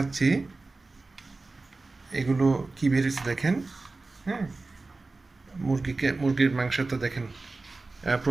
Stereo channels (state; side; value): quieter; left; 3.5 dB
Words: এগুলো কী বের হয়েছে দেখেন। হ্যাঁ, মুরগির মাংস তো দেখেন